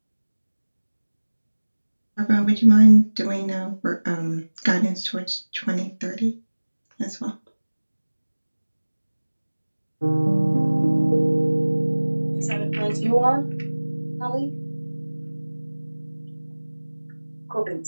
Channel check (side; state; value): both; inverted; correlation -1.00